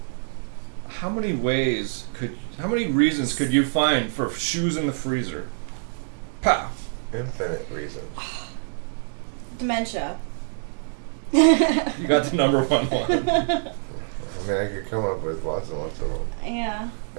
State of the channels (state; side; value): silent; left; digital silence